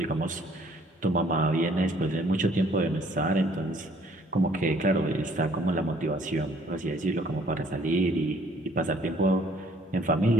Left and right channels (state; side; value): normal; both; correlation 0.59